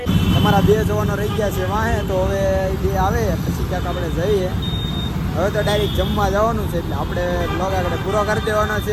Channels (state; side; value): identical; both; correlation 1.00